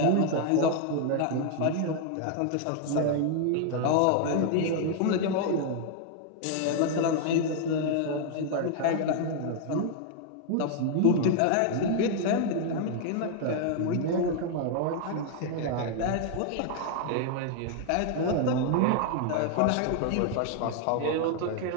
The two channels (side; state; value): both; different; correlation 0.00